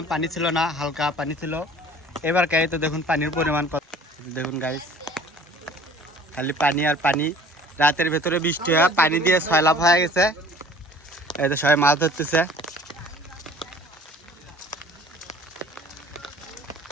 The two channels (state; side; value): normal; both; correlation 0.49